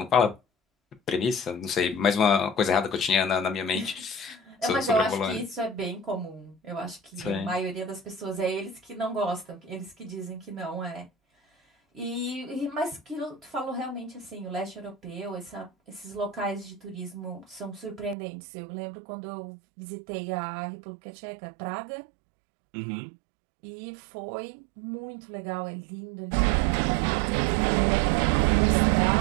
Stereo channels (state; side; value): drops out; left; at 18.2 s